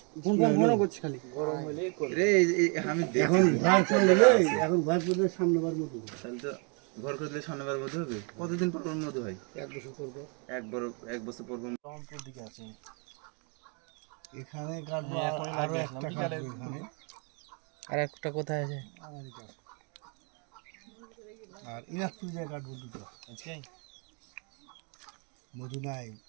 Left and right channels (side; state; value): left; quieter; 36.3 dB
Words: ঘন করছে খালি গরম হইলে রে আমি এখন ভয় করে এখন ভয় করলে সামনেবার মতো তাহলে তো ঘর করলে সামনেবার মধ্যে হবে। কতদিন পর পর মধ্যে হয়? 1 বছর করবো। এক বছর পর পর। রংপুর দিকে আছে। এখানে কাটবো হ্যাঁ, এখনই আরো লাগবে, একটা বিকালে কাটবো এখানে আর একটা কোথায় আছে? আমারই কাছে। আর ইনাজপুর জায়গা কাটবো দুটো। আজকে মধু নাই